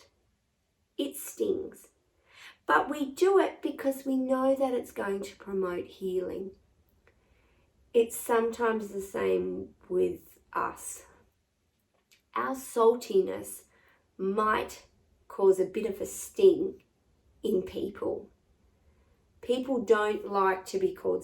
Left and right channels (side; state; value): both; identical; correlation 1.00